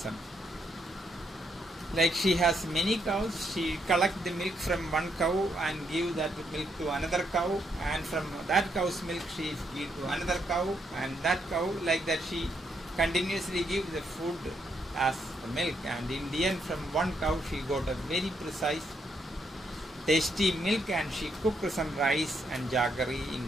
Like she has many cows, she collects the milk from one cow and give that milk to another cow, and from that cow's milk she gives to another cow, and that cow, like that she continuously gives the food as the milk, and in the end from one cow she got a very precise tasty milk, and she cooked some rice and jaggery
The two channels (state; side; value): normal; both; correlation 0.76